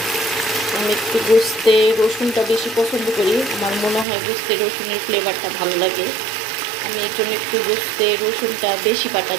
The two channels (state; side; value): drops out; left; at 4.0 s